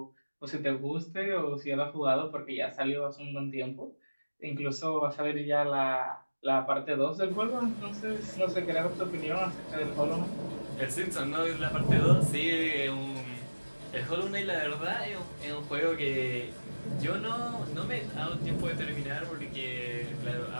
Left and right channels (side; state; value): both; inverted; correlation -1.00